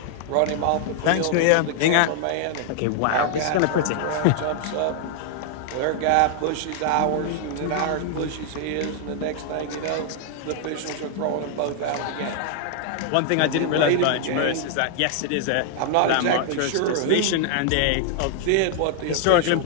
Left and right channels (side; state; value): both; different; correlation 0.00